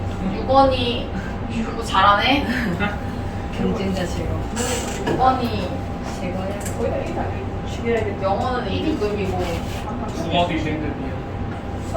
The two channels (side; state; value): both; identical; correlation 1.00